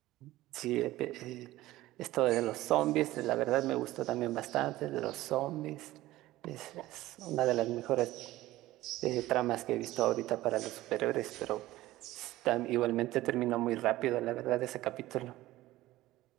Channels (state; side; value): quieter; left; 16.6 dB